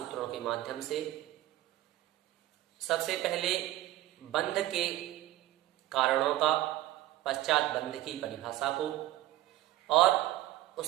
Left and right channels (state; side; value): quieter; left; 15.2 dB